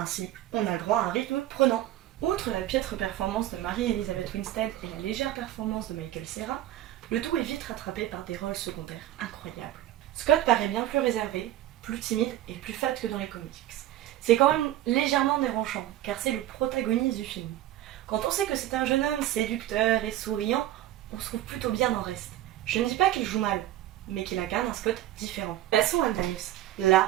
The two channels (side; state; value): left; quieter; 13.7 dB